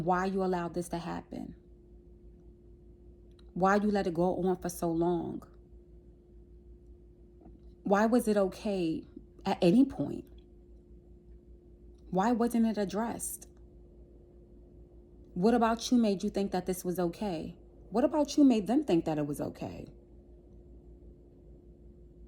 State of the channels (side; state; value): both; identical; correlation 1.00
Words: why you allowed this to happen. Why you let it go on for so long. Why was it okay at any point? Why wasn't it addressed? What about you made you think that this was okay? What about you made them think that it was okay?